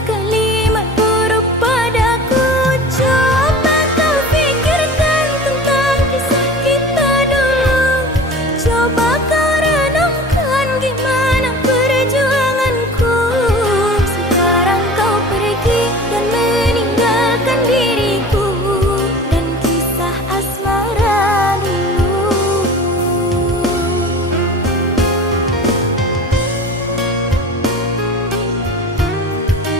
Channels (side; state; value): both; normal; correlation 0.39